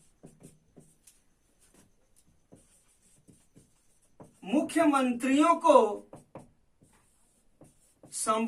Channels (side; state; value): both; identical; correlation 1.00